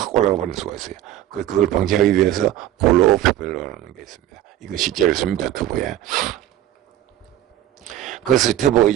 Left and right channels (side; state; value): left; quieter; 12.9 dB